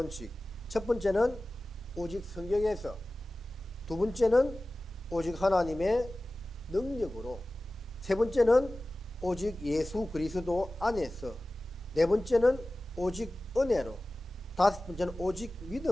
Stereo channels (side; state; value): both; normal; correlation 0.97